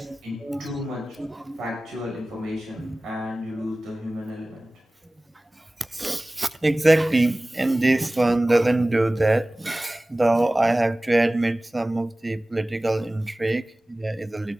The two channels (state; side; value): normal; both; correlation 0.98